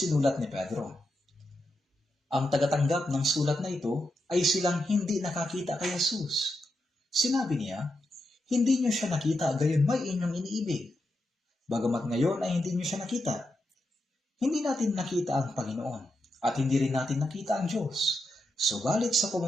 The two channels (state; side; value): normal; both; correlation 0.86